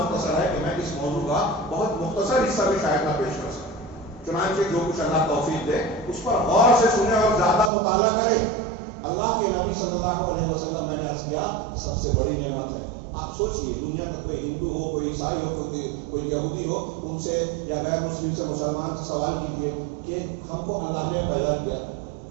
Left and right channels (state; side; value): drops out; left; at 7.7 s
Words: ہے کہ میں اس موضوع کا بہت مختصر حصہ بھی شاید نہ پیش کر سکوں. چنانچہ جو کچھ اللہ توفیق دے اس پر غور سے سنیں اور زیادہ مطالعہ کریں. اللہ کے نبی صلی اللہ علیہ وسلم، میں نے عرض کیا، سب سے بڑی نعمت ہے. آپ سوچئے دنیا کا کوئی ہندو ہو، کوئی عیسائی ہو، کوئی یہودی ہو، ان سے یا غیر مسلم سے، مسلمان سے سوال کیجئے کہ ہم کو اللہ نے پیدا کیا،